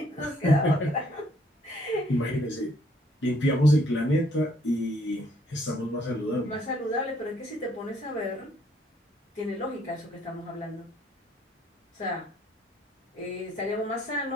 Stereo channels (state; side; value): normal; both; correlation 0.65